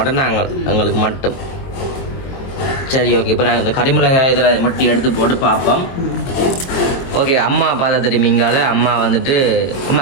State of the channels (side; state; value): right; late; 22 ms